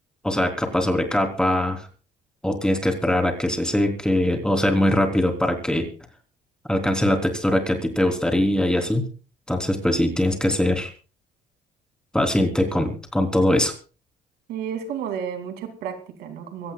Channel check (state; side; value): normal; both; correlation 0.85